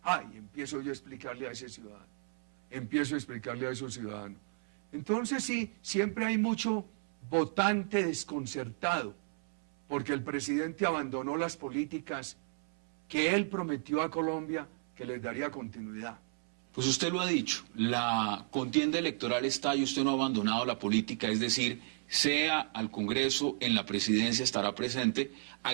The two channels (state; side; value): silent; left; 55 dB below the other